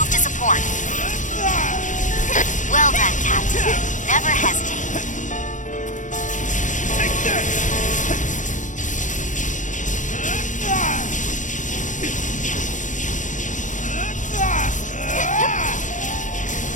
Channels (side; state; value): right; late; 0.37 ms